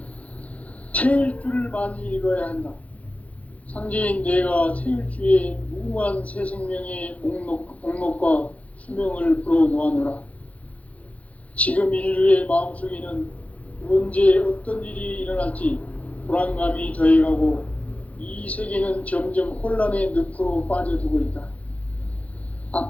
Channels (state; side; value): late; right; 0.068 ms